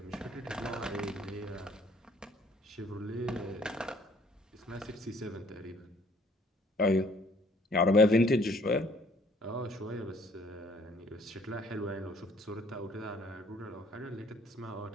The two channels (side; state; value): both; normal; correlation 0.59